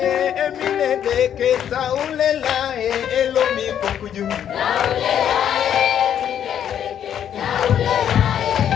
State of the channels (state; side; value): quieter; right; 9.5 dB